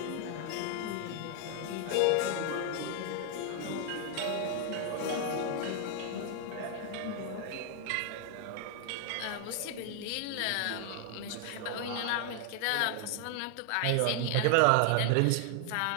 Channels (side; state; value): both; different; correlation 0.00